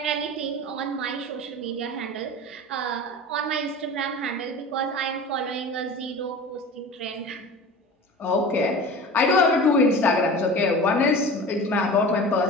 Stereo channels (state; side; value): normal; both; correlation 0.36